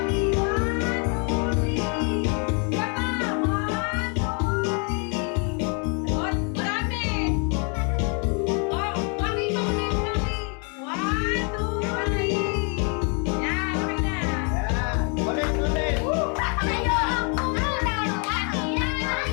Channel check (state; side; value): quieter; right; 37.6 dB